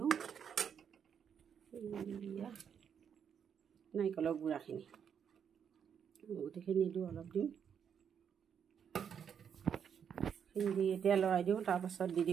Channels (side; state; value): left; quieter; 7.8 dB